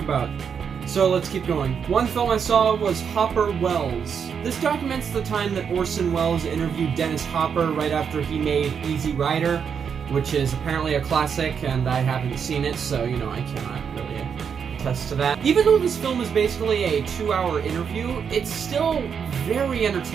So let's keep going. One film I saw was Hopper Wells. This documents the time that Orson Welles interviewed Dennis Hopper right after he made Easy Rider, which is apparently a classic, and I haven't seen it, so, I cannot really attest to that. Even though this film is basically a 2-hour interview, it's still very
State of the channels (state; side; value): quieter; left; 7.0 dB